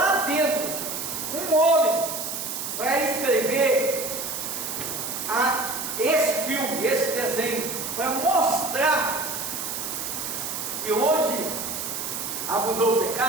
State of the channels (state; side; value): noise; right; hiss, 4 dB below the sound